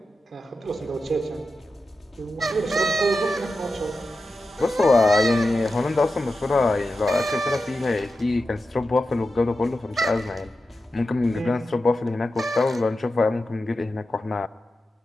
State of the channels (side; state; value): both; normal; correlation 0.91